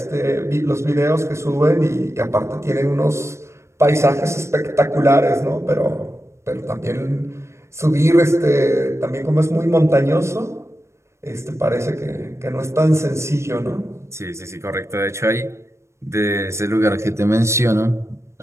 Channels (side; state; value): left; late; 0.13 ms